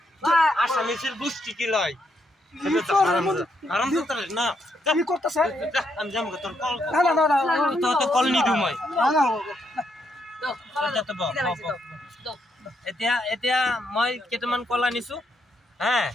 আসামিসের গোষ্ঠী কি লয়? কি করে বন্ধু? হারামজাদা না কি করতেছে? আমি যাম গো তোর কল না না না না। তো কল নি দিও মই। না না। দাও, যাতে বহ, খিদা লাগছে, বহ, দাও, দাও। এতিয়া মই কেইটামান কল আনিছো, হ্যাঁ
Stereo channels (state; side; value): normal; both; correlation 0.77